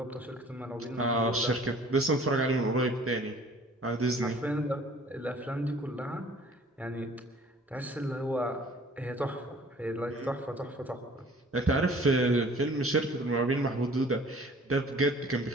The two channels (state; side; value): normal; both; correlation 0.51